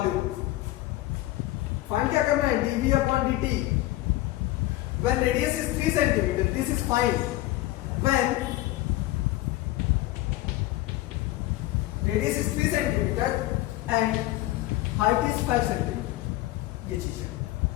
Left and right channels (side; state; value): right; quieter; 17.0 dB